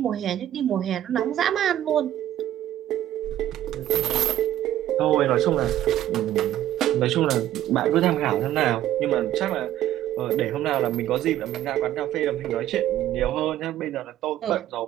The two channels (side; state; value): left; quieter; 12.6 dB